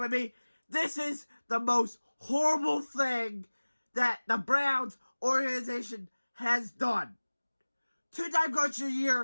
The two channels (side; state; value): both; inverted; correlation -1.00